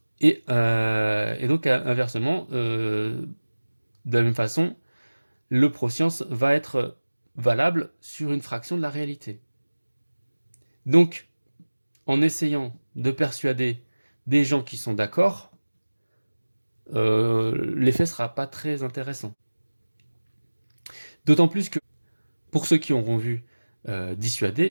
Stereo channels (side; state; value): both; inverted; correlation -1.00